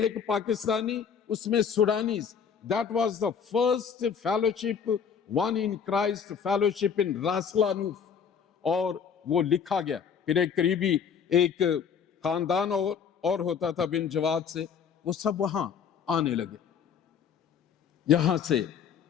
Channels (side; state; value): right; quieter; 7.0 dB